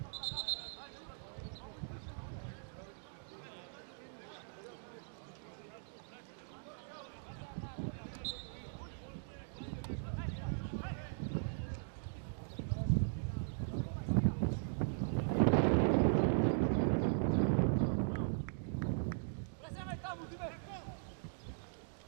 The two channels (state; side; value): silent; left; digital silence